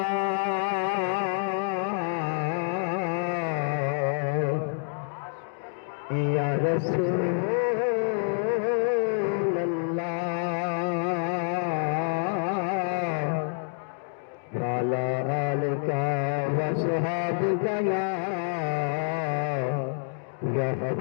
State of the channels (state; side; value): silent; right; digital silence